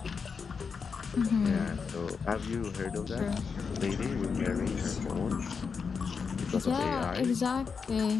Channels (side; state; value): right; quieter; 5.6 dB